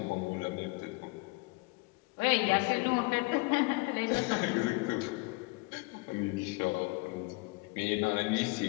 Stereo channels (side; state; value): right; quieter; 26.2 dB